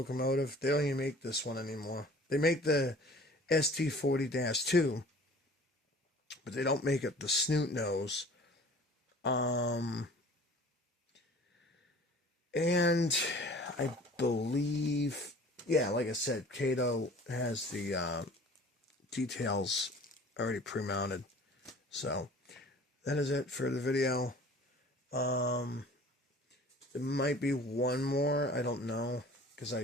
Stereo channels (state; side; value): normal; both; correlation 0.47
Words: They don't even make this one anymore. They make the SD40-2, but they don't make it the snoot nose. And I believe, yeah, like I said, Kato has the details already pre-mounted. So that is it for the video. There might be one more, I don't know, because I